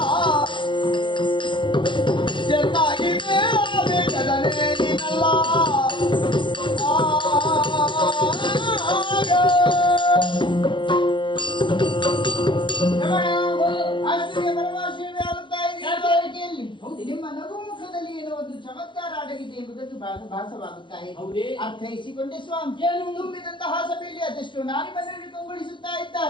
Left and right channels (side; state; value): right; late; 0.23 ms